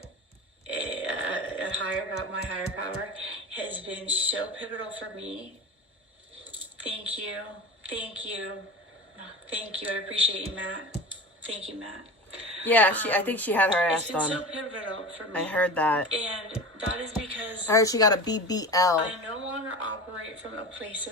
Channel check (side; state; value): both; normal; correlation 0.31